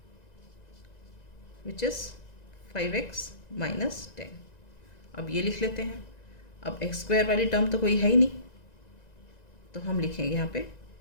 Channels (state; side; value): late; right; 1.9 ms